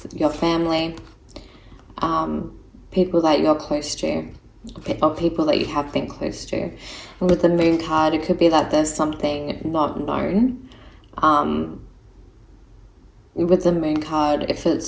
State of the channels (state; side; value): identical; both; correlation 1.00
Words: your family, people that you're close to, or people that you have been close to. And with the Moon card, it could be that there's something not known. With the Moon card, if